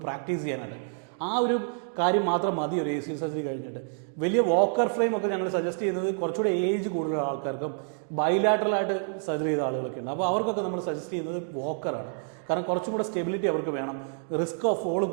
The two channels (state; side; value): silent; left; 59 dB below the other